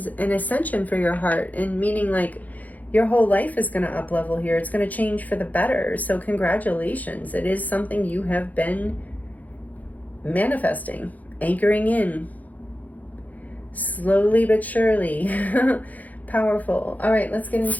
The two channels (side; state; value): right; late; 0.079 ms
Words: an ascension for your heart, and meaning like your whole life is going to up level here. It's going to change for the better. So congratulations. It is something you have been manifesting, anchoring in, slowly but surely. Powerful. All right, let's get